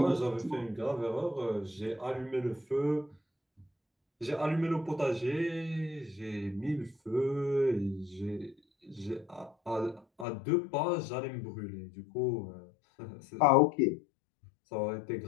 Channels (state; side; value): drops out; right; at 10.2 s